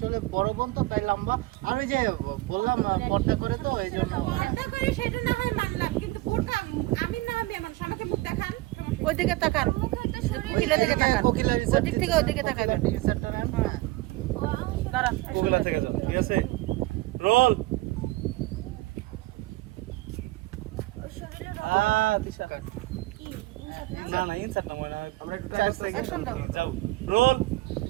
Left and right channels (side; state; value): left; quieter; 19.8 dB